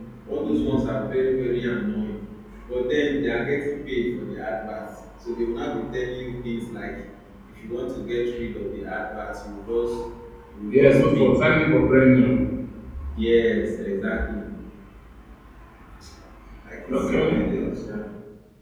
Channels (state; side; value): identical; both; correlation 1.00